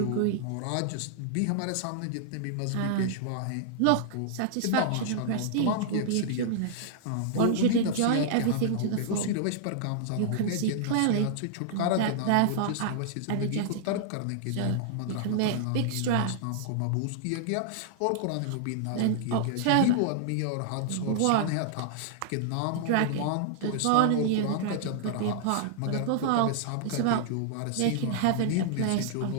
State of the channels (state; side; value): different; both; correlation -0.01